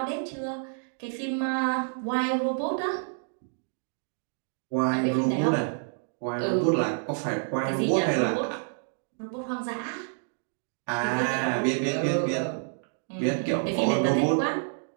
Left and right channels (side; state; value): left; silent; 59 dB below the other